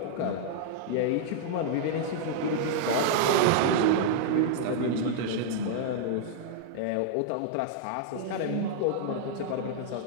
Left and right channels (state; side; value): different; both; correlation -0.01